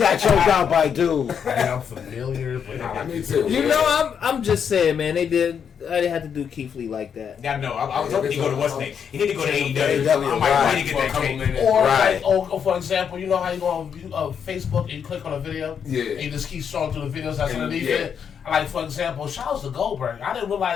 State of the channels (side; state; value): right; quieter; 7.5 dB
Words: choked out by dude. I'm familiar, but me too. You know, I'm just saying, man. I didn't have to do Keith Lee like that. Yeah, no, I was hoping he'd go to what's name. He need to go to AEW. I might need to get that cake. Or for example, you know how you go on Facebook and you click on a video? Yeah. And you just keep scrolling through the videos that's underneath it. Like, for example, shout out to Goldberg. I didn't